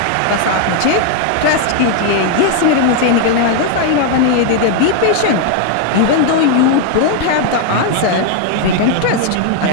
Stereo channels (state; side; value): different; both; correlation 0.00